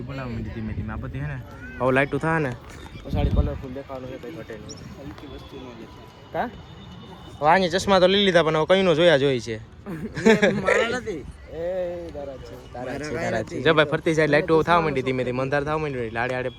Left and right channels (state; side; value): identical; both; correlation 1.00